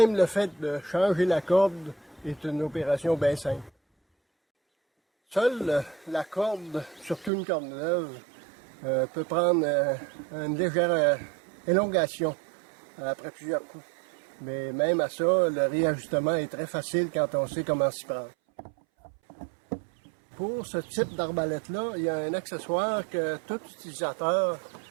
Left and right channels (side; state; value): left; drops out; at 7.3 s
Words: le fait de changer la corde est une opération bien simple. Seule la corde, surtout une corde neuve, peut prendre une légère élongation après plusieurs coups. Mais même à ça, le réajustement est très facile quand on sait comment s'y prendre. Pour ce type d'arbalète-là, il y a un accessoire que tout utilisateur